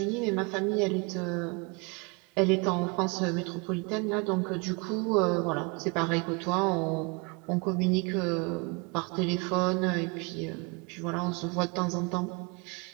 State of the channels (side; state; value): left; quieter; 30.3 dB